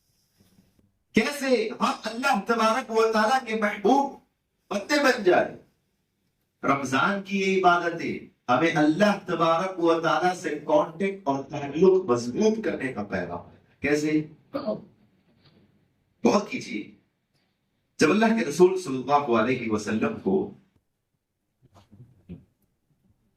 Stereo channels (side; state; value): both; identical; correlation 1.00